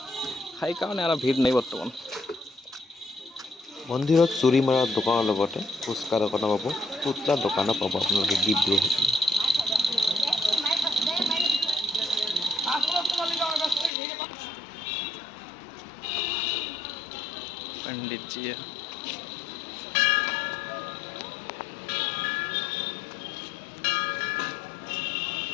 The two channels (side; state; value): right; drops out; at 13.9 s